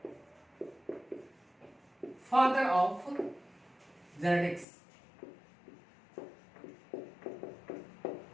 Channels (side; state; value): right; drops out; at 4.7 s